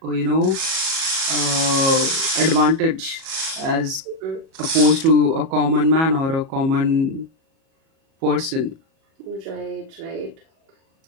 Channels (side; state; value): left; late; 37 ms